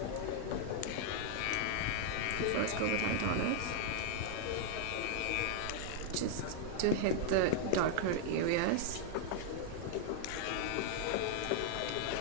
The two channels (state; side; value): different; both; correlation 0.00